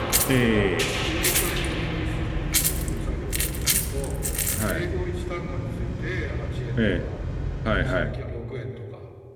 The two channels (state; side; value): identical; both; correlation 1.00